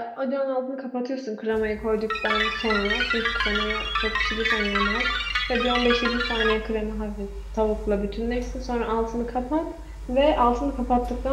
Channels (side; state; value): both; identical; correlation 1.00